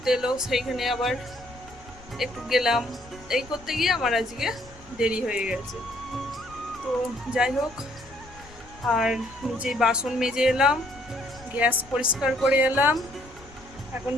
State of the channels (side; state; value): left; noise; rumble, 21 dB below the sound